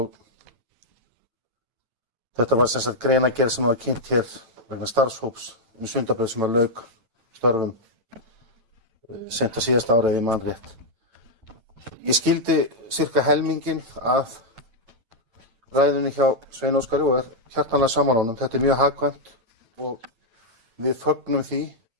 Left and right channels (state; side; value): late; left; 8.9 ms